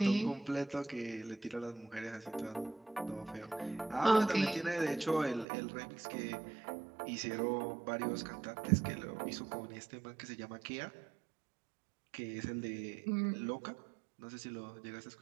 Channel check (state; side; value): drops out; left; at 5.5 s